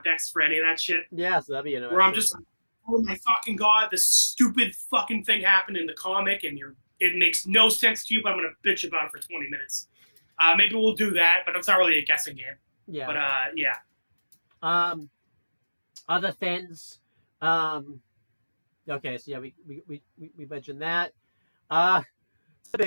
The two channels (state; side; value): inverted; both; correlation -1.00